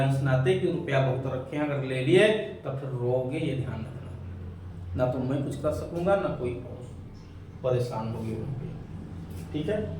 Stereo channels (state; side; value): identical; both; correlation 1.00